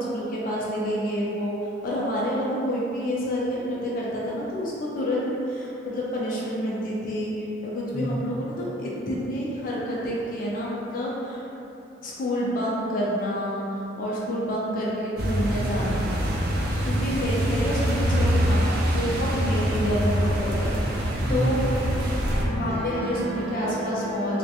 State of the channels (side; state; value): both; normal; correlation 0.64